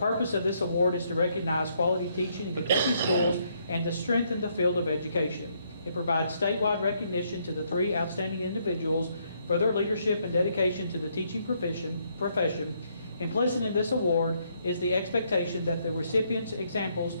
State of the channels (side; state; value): both; inverted; correlation -0.72